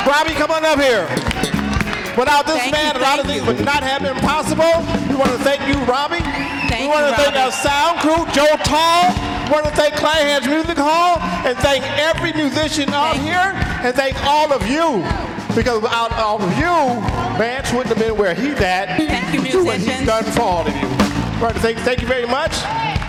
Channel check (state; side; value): identical; both; correlation 1.00